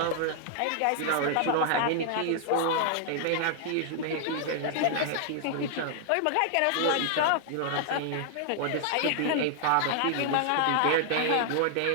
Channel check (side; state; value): both; different; correlation 0.00